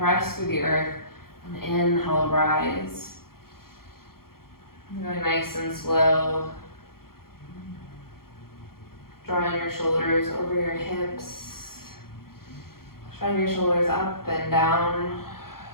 through the earth, and inhale, rise. Going nice and slow. Drawing your shoulders over your hips. Drawing your shoulders up and down.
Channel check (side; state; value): right; late; 0.93 ms